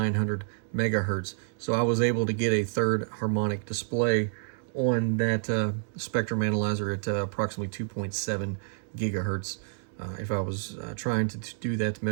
megahertz. So I was able to get a third harmonic display on that spectrum analyzer at approximately 2.7 gigahertz. If I was trying to do that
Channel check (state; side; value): silent; left; 59 dB below the other